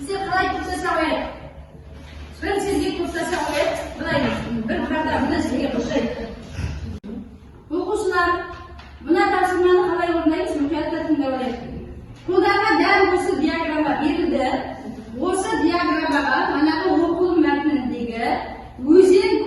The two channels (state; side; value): identical; both; correlation 1.00